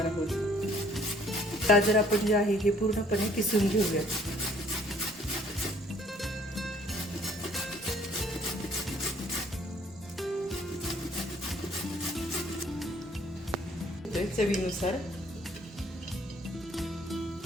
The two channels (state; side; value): normal; both; correlation 0.60